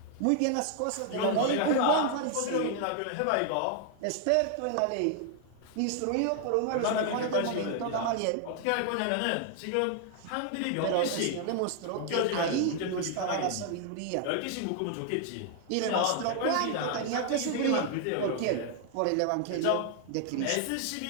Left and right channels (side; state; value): both; different; correlation 0.00